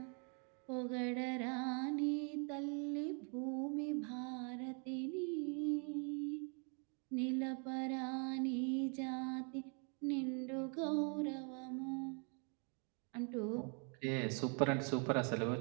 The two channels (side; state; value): left; quieter; 37.9 dB